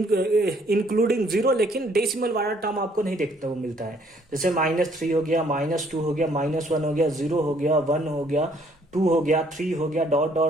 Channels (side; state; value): both; normal; correlation 0.63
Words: जीरो, लेकिन डेसिमल वाला टर्म आपको नहीं देखने को मिलता है। जैसे -3 हो गया, -2 हो गया, -1 हो गया, 0 हो गया, 1 हो गया, 2 हो गया, 3 हो गया, डॉट